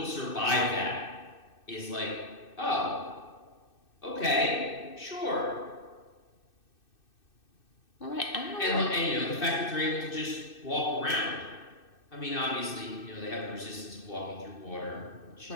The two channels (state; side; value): late; right; 2.6 ms